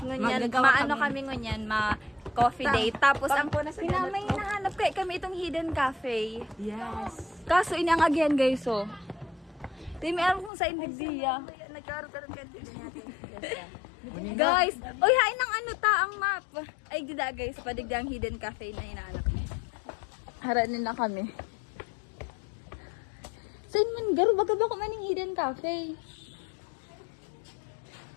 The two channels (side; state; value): right; drops out; at 10.5 s